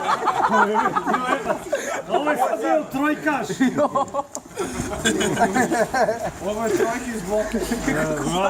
Ovo je sad bio trojkaš. Ovo je trojki iz bloke.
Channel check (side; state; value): both; identical; correlation 1.00